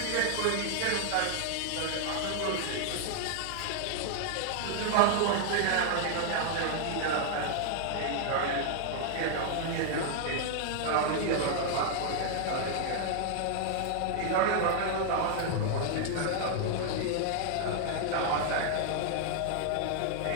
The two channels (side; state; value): both; different; correlation 0.00